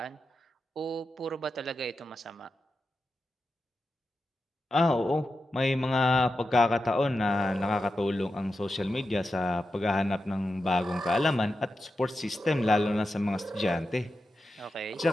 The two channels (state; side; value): normal; both; correlation 0.90